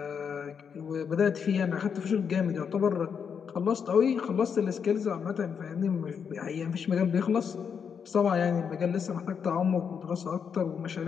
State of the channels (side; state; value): right; quieter; 6.9 dB